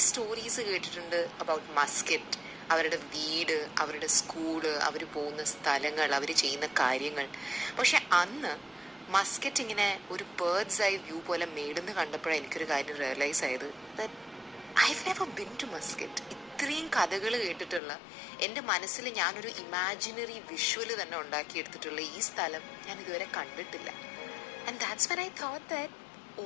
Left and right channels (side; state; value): right; drops out; at 17.8 s